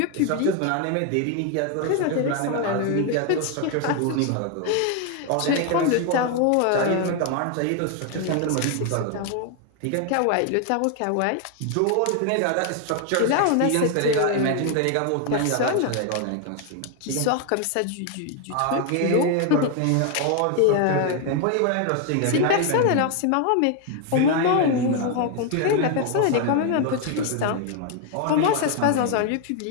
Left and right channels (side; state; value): both; different; correlation 0.01